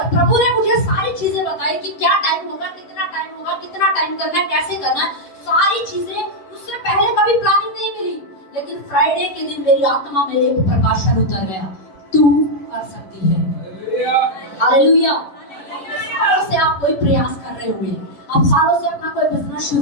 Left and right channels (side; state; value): right; late; 11 ms